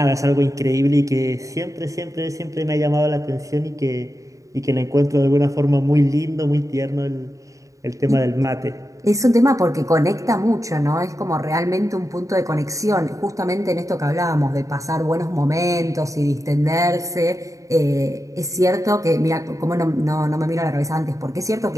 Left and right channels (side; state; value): left; late; 0.16 ms